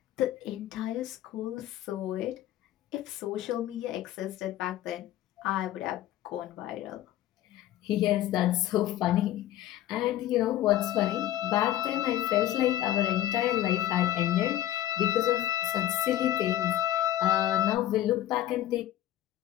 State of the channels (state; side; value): quieter; right; 13.2 dB